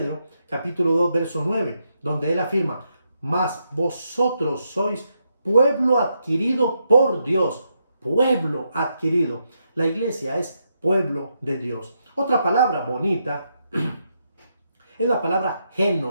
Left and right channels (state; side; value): inverted; both; correlation -0.81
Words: capítulo 2, verso 9. donde él afirma, mas vosotros sois pueblo adquirido por Dios, pueblo adquirido. La iglesia es pueblo de Dios. Otra palabra bonita es la palabra